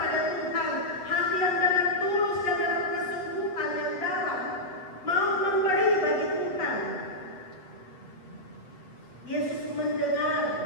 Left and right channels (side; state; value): right; late; 8.3 ms